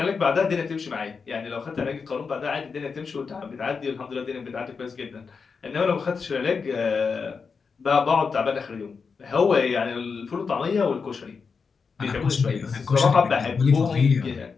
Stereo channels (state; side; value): quieter; right; 5.3 dB